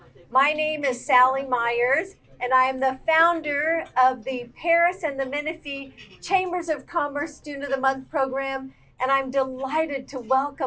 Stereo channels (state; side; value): identical; both; correlation 1.00